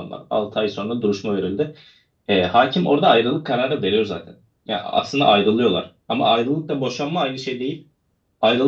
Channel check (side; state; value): both; identical; correlation 1.00